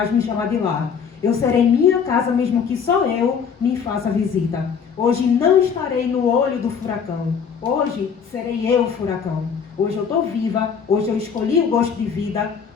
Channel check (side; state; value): right; quieter; 6.7 dB